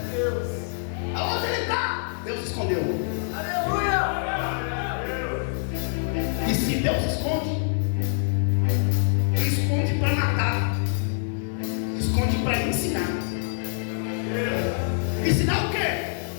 Deus. Aonde ele está? Deus escondeu. Aleluia. E se Deus esconde, esconde para matar, esconde para ensinar. Ensinar o quê?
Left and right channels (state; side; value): silent; right; 61 dB below the other